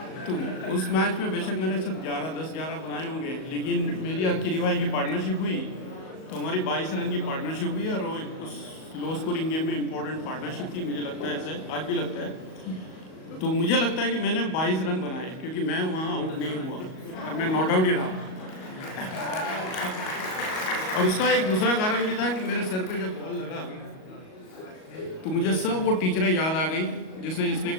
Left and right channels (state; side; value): late; right; 38 ms